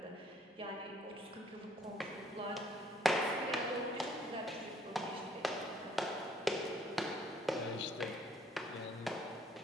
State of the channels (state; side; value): normal; both; correlation 0.62